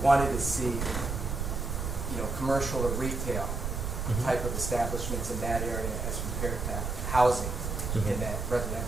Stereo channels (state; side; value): noise; right; rumble, 3 dB below the sound